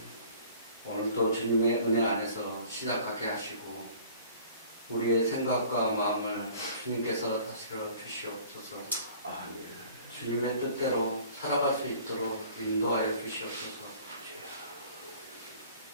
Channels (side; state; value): both; inverted; correlation -0.50